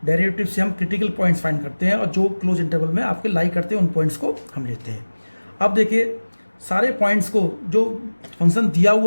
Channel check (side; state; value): both; inverted; correlation -1.00